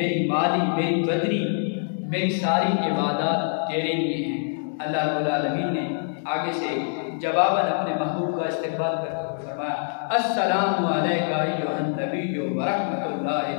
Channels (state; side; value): silent; right; digital silence